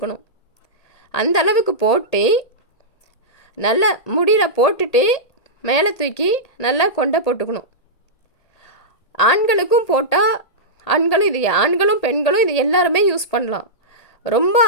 அந்தளவுக்கு போட்டு நல்லா முடியில் போட்டுட்டு மேலே தூக்கி நல்லா கொண்டை போட்டுக்கணும். ஆண்களுக்கும் போட்டால் ஆண்களும் பெண்களும் இது எல்லாருமே யூஸ் பண்ணலாம். ரொம்ப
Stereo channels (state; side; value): late; right; 1.8 ms